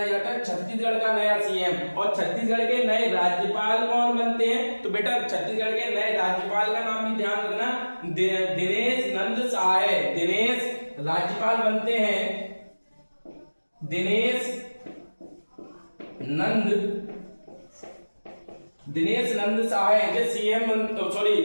जाता है? छत्तीसगढ़ का नया सीएम। और छत्तीसगढ़ के नए राज्यपाल कौन बनते हैं, तो बेटा छत्तीसगढ़ के नए राज्यपाल का नाम भी ध्यान रखना, दिनेश नंद सहाय, दिनेश राज्यपाल बनते हैं, दिनेश नंद सहाय जो सीएम, सॉरी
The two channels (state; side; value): inverted; both; correlation -1.00